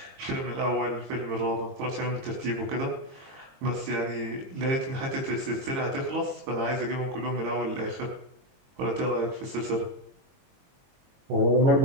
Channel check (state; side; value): late; left; 22 ms